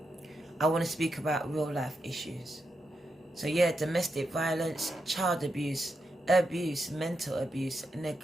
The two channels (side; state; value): both; normal; correlation 0.85